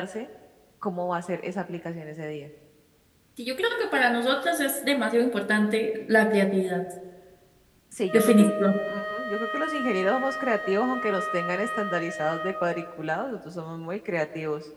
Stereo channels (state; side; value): identical; both; correlation 1.00